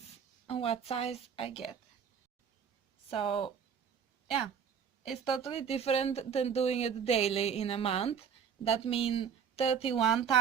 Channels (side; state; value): left; quieter; 7.3 dB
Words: on what size I get. So yeah, it's totally different than doing it daily in a month. That means 31